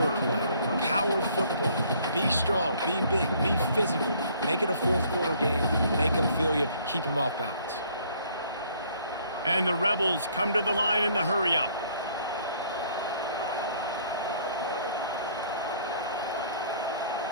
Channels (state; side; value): inverted; both; correlation -0.60